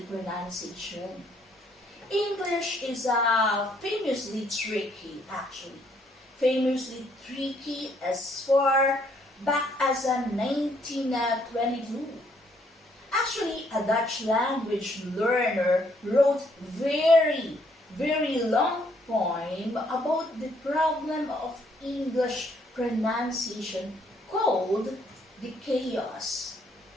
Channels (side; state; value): both; normal; correlation 0.68